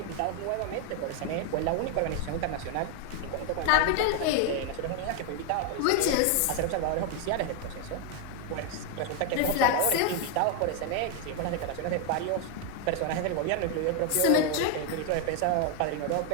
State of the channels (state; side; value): different; both; correlation 0.01